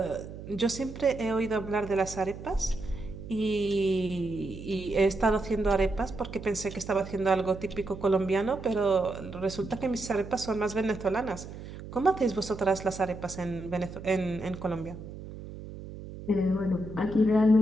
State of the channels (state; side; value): noise; right; hum, 12 dB below the sound